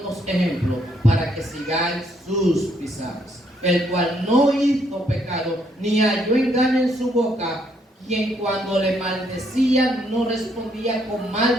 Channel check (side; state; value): both; normal; correlation 0.71